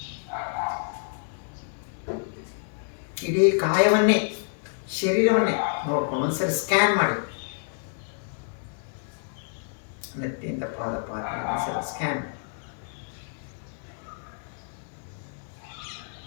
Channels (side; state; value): right; silent; 59 dB below the other